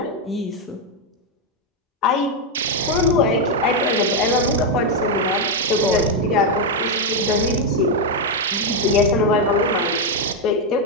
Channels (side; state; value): both; normal; correlation 0.03